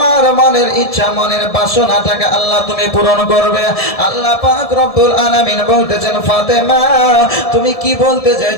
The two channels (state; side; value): late; right; 1.7 ms